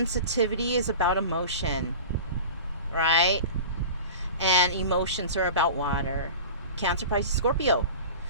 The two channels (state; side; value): inverted; both; correlation -0.35